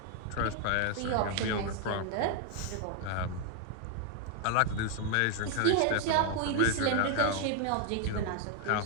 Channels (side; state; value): both; different; correlation 0.01